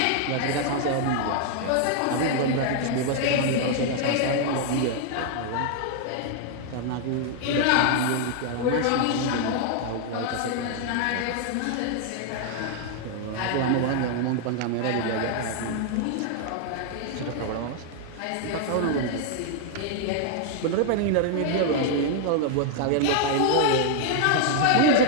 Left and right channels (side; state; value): both; different; correlation 0.00